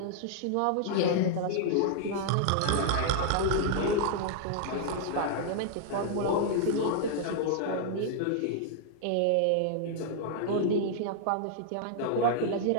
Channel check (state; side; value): different; both; correlation -0.01